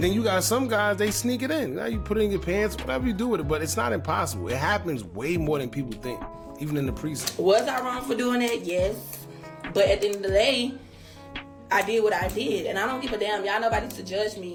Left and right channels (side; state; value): both; identical; correlation 1.00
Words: then you got some guys, they sneak it in. You put it in your pants, whatever you do with it, but it's not impossible. It happens way more than people think, even in the precinct. Was I wrong for doing that? Yes. But at the end of the day, I did what I did, and I don't give a damn. Y'all nobody to judge